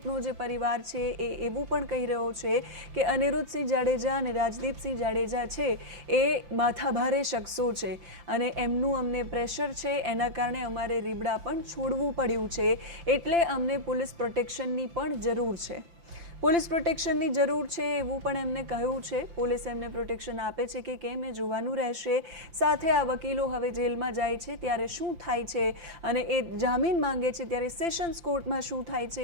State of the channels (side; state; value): left; late; 5.8 ms